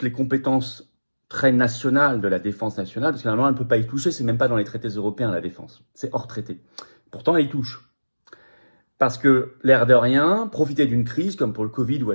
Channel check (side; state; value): both; inverted; correlation -1.00